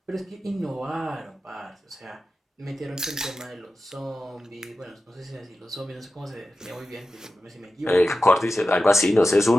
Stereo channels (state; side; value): normal; both; correlation 0.93